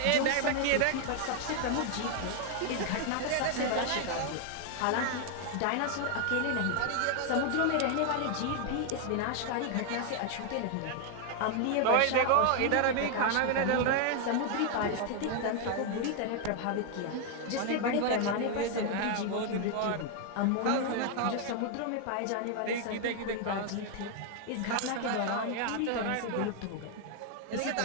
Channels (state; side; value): different; both; correlation 0.00